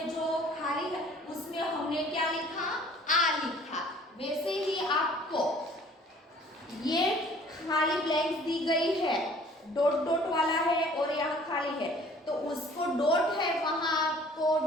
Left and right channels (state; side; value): normal; both; correlation 0.52